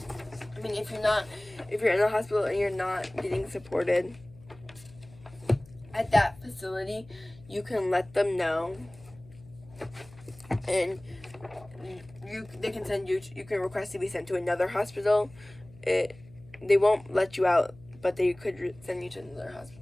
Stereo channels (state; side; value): noise; left; hum, 22 dB below the sound